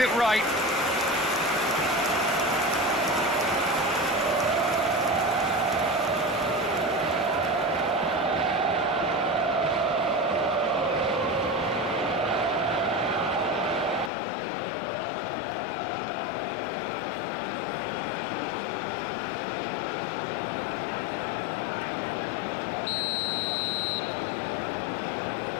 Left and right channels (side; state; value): right; drops out; at 14.1 s